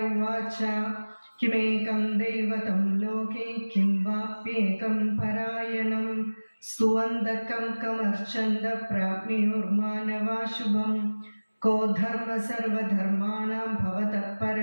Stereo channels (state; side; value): inverted; both; correlation -1.00